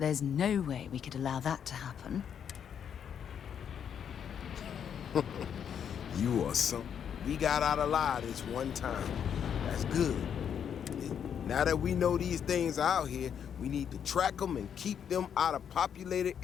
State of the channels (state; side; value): quieter; right; 8.2 dB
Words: no way we could allow that to happen. You are some... We got out alive this one time. That's good. Now that we know these things are out here, we need to track them and keep them out of populated